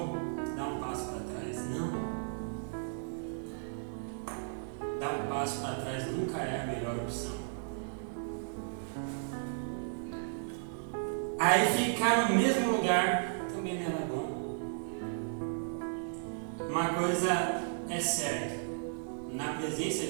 dar um passo para trás. Não. Dar um passo para trás nunca é a melhor opção. Aí ficar no mesmo lugar também não era bom. Uma coisa é certa, na presença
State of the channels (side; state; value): left; silent; digital silence